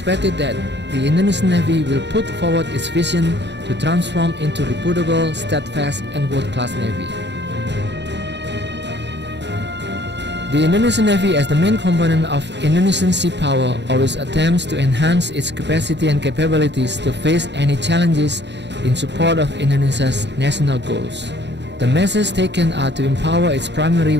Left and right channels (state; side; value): late; left; 0.51 ms